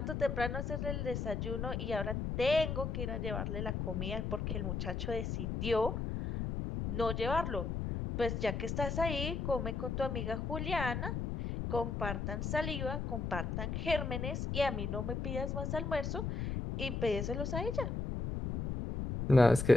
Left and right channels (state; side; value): noise; left; rumble, 2 dB below the sound